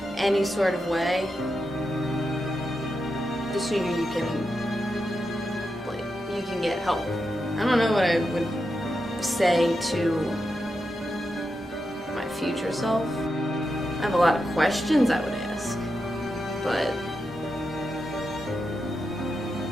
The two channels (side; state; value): both; normal; correlation 0.87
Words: any sort of way, the sooner you can get help. I don't know what I would say to my future self. I have a lot of questions I would ask, but